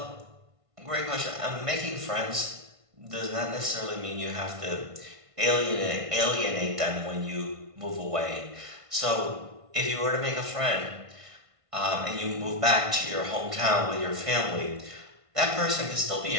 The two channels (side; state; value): left; late; 1.5 ms